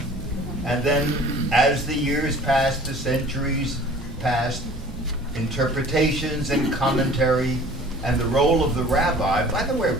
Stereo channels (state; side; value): normal; both; correlation 0.47